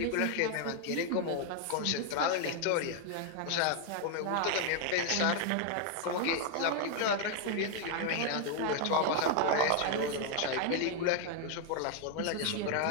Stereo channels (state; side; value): different; both; correlation 0.00